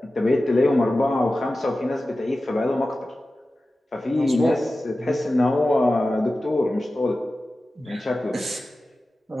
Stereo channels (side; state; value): both; normal; correlation 0.95